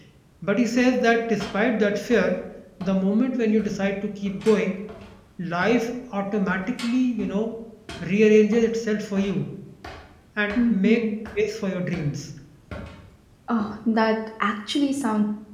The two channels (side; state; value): both; identical; correlation 1.00